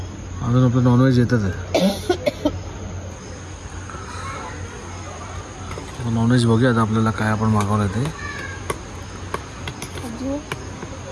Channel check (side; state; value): both; identical; correlation 1.00